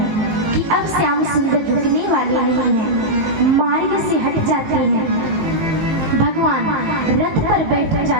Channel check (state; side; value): late; left; 18 ms